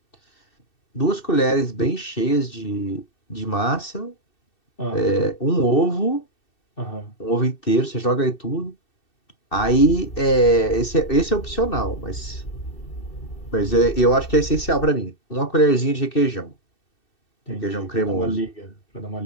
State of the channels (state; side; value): late; right; 2.6 ms